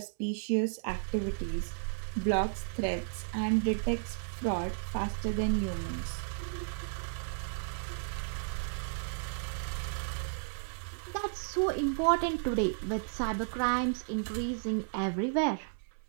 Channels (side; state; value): left; silent; 55 dB below the other